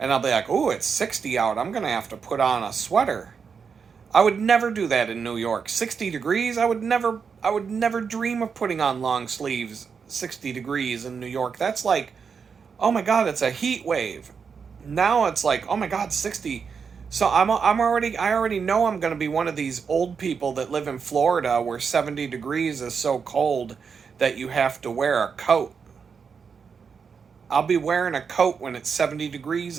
I'll be like, "Ooh, it's 60 out. I'm gonna have to put on a sweater." I would never do that in New York. 60 degrees. I would never dream of putting on long sleeves. 60 degrees in New York. That's like, oh my God, it's a heat wave. Now it's like, oh my God, 60. So I already know I'm going to be one of these old people that live in Florida where 70 degrees is so cold that you have to wear a coat. I'll be wearing a coat when it's 70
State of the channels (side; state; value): left; quieter; 6.0 dB